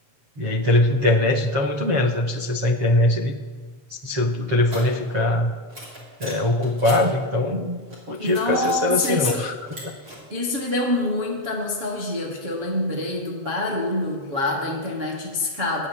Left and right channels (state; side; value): late; left; 7.4 ms